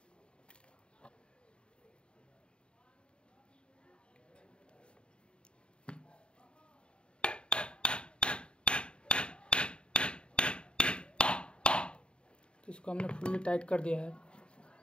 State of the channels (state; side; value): late; right; 0.053 ms